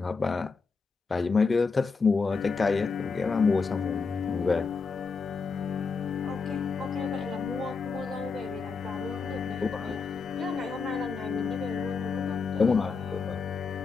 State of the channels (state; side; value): quieter; right; 4.8 dB